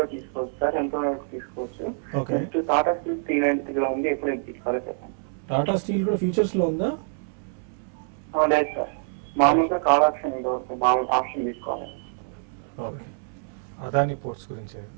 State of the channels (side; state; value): left; silent; 61 dB below the other